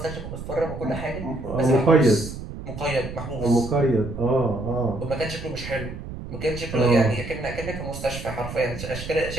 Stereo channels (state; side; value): noise; right; rumble, 9 dB below the sound